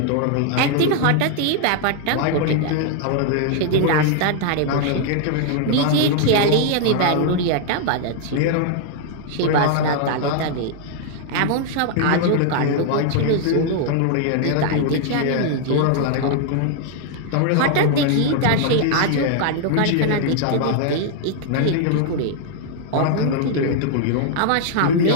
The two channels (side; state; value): both; different; correlation 0.00